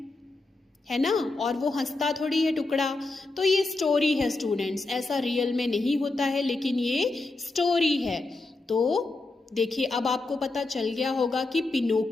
है ना, और वो हंसता थोड़ी है टुकड़ा। तो ये स्टोरी है स्टूडेंट्स, ऐसा रियल में नहीं होता है, लेकिन ये स्टोरी है। तो देखिए अब आपको पता चल गया होगा कि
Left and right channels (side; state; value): right; quieter; 3.2 dB